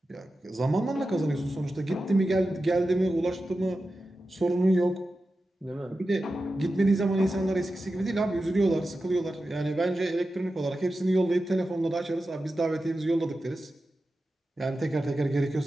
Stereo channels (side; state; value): both; normal; correlation 0.92